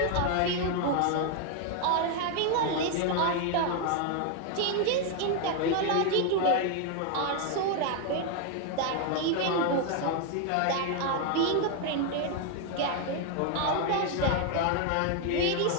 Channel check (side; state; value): both; different; correlation 0.01